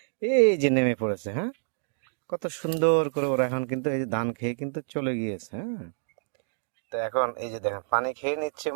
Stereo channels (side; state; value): left; silent; digital silence